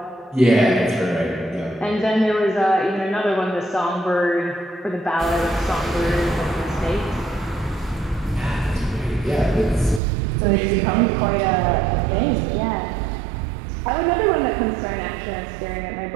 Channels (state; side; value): drops out; left; at 10.0 s